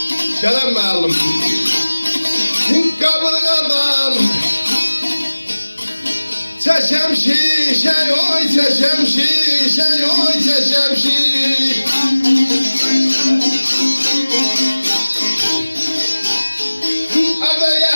Selam mağlum. Kaburgadan çeşem şişe, oy çeşem şişe, oy çeşem şişe. Ada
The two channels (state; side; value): inverted; both; correlation -1.00